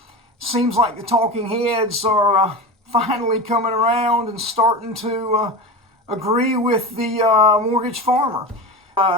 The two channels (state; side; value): normal; both; correlation 0.27